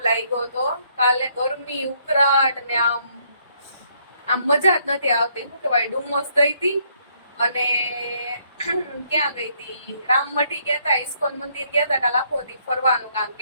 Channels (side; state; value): both; inverted; correlation -0.69